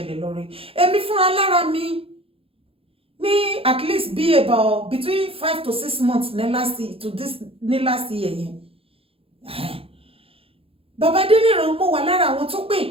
lé lórí. Èmi fúnra lára mi ní at least be about between 5 to 6 months ní last year yẹn. Bàbá Adeniran mo wà lára àwọn tó pè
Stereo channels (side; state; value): left; late; 0.27 ms